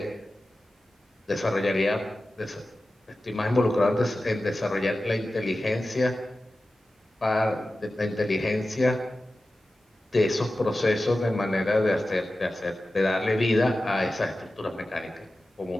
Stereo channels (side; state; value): both; normal; correlation 0.94